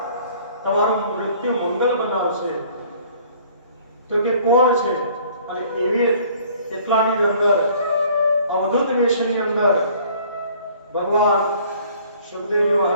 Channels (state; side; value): inverted; both; correlation -0.55